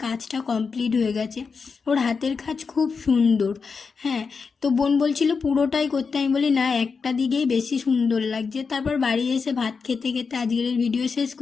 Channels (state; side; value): quieter; right; 5.2 dB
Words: কাজটা কমপ্লিট হয়ে গেছে। ওর হাতের কাজ খুব সুন্দর। হ্যাঁ, তো বোন বলছিল পুরোটাই করতে, আমি বলি না, একটা দিকেই বেশি সুন্দর লাগছে। তারপর বাড়ি এসে ভাত খেতে খেতে আজকের ভিডিও শেষ